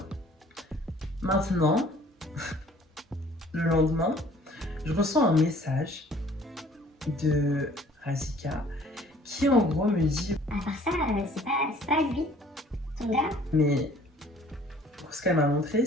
Maintenant, le lendemain, je reçois un message de Razika qui en gros me dit à part ça, c'est pas lui, ton gars. Mais ce qu'elle m'a montré,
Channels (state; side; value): normal; both; correlation 0.54